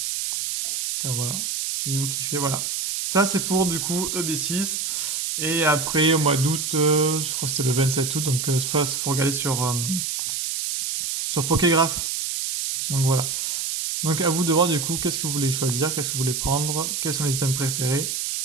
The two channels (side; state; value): right; noise; hiss, 2 dB below the sound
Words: Car voilà, si vous kiffez, voilà. Ça, c'est pour du coup EB6. Et après, au mois d'août, je crois que c'était le 27 août, donc il faut regarder sur Pokégraph. Donc voilà. Donc à vous de voir du coup qu'est-ce que vous voulez choisir, qu'est-ce que vous voulez prendre, quels sont les items préférés.